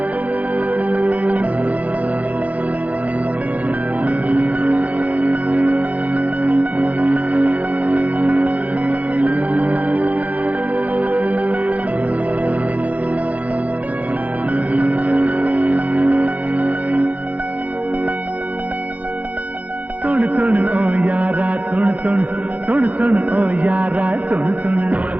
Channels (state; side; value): late; left; 0.070 ms